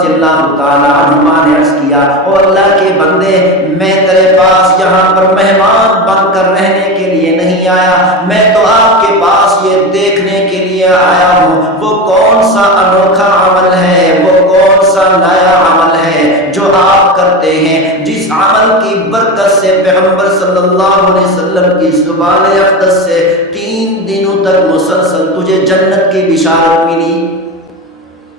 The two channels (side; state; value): both; normal; correlation 0.21